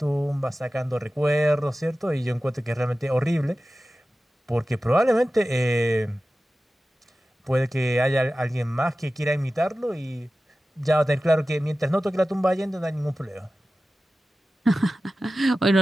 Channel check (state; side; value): normal; both; correlation 0.95